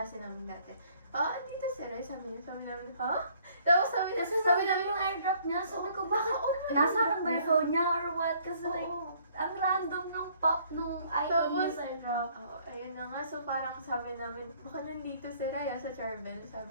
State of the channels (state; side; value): inverted; both; correlation -0.61